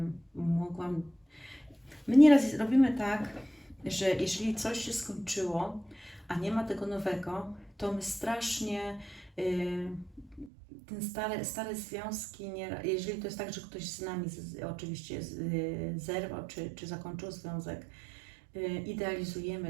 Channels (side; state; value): left; drops out; at 10.5 s